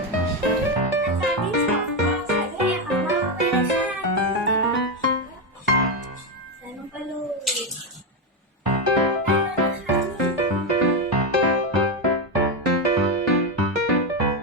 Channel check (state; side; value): normal; both; correlation 0.08